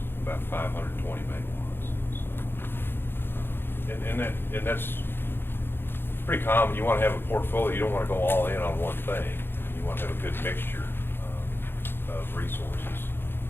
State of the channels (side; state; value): right; late; 0.10 ms